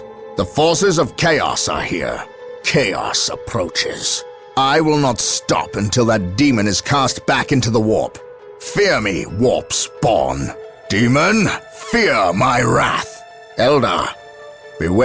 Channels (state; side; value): identical; both; correlation 1.00